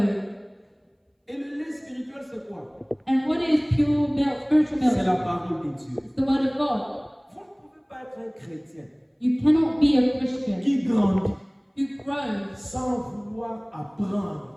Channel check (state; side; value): identical; both; correlation 1.00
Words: Et le lait spirituel c'est quoi? And what is pure milk, spiritual C'est la milk? parole de Dieu. It's the word of God. Vous ne pouvez pas être un chrétien You cannot be a Christian qui grandit who grows sans vouloir